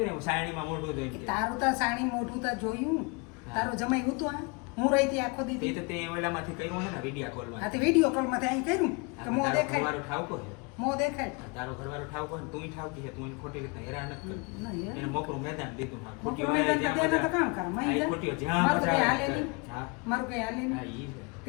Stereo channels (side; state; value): right; quieter; 30.1 dB